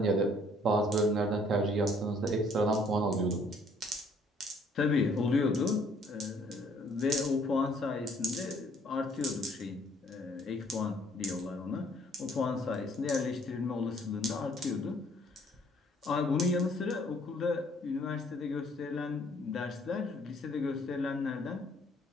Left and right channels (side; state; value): both; normal; correlation 0.62